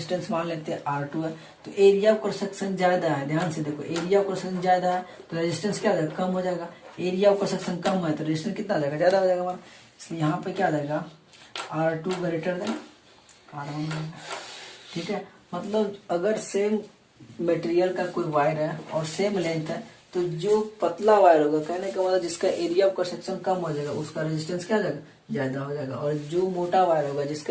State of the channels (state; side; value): identical; both; correlation 1.00